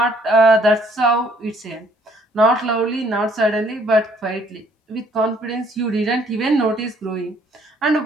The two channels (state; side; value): normal; both; correlation 0.63